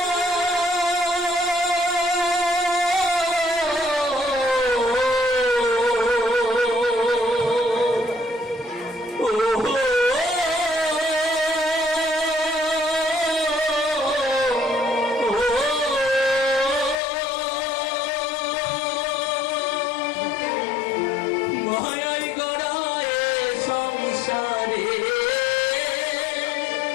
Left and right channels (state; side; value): drops out; right; at 16.9 s